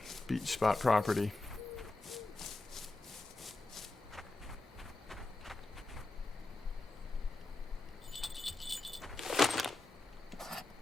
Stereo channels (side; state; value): right; quieter; 3.0 dB